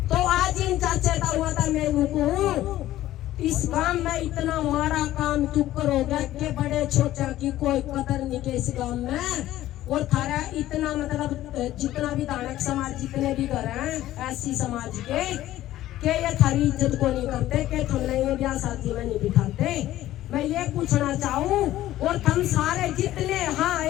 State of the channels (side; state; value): right; quieter; 14.3 dB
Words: तो आज इन चाचे का हुआ था, मैं हूँ इस गांव में इतना मारा काम तू करोगे कि बड़े छोटे की कोई कदर नहीं के इस गांव में। और थारा इतना मतलब जितना भी दानक समाज जितने भी घर हैं ऐसी समाज के ये थारी इज्जत को नहीं करते, कि तुमने ये ब्याह शादी में नहीं बिठाते। मैं ये पूछना चाहूँ और हम सारे जितने, हाँ